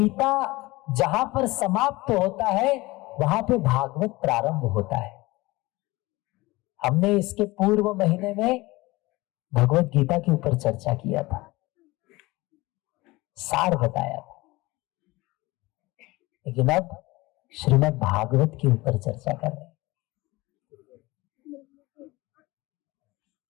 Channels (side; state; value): right; quieter; 21.2 dB